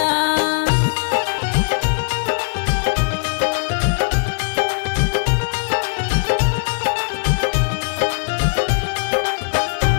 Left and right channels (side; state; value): right; silent; digital silence